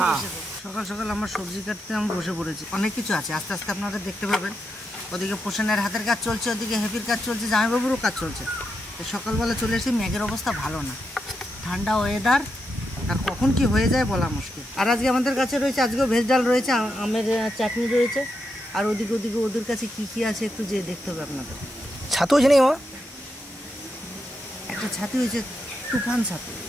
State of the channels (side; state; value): both; normal; correlation 0.84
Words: বসে যাই। সকাল সকাল আমার সবজি কাটতে আমি বসে পড়েছি। অনেক কিছু আছে, আস্তে আস্তে আপনারা দেখতে পাবেন। ওদিকে পোষণের হাতের কাজ চলছে, ওদিকে হেপির কাজ চলছে, জামাইবাবুরও কাজ চলছে। সকালবেলা চলে এসেছি, মেঘের অবস্থা ভালো না, ঠান্ডা ওয়েদার, আর কখন কি হয়ে যায় বলা মুশকিল। আর আজকে আমাদের কাছে রয়েছে, আজকেও ভেজ ডাল রয়েছে, আমের চাটনি রয়েছে, আর ওদিকে ওদের কাছে কি কি আছে একটু যেয়ে দেখতে হবে আপনাদের। ছাতু আছে নেই? একটা ছাতু হয়েছে, তুফান ছাতু।